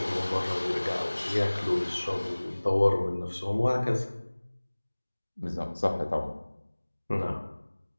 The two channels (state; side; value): inverted; both; correlation -1.00